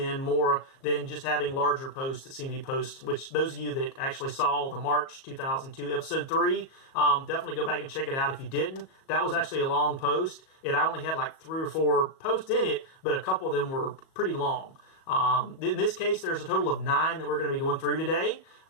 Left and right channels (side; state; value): right; late; 37 ms